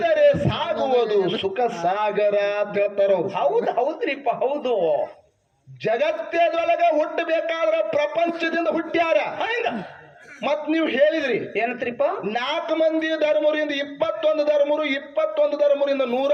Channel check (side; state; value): both; identical; correlation 1.00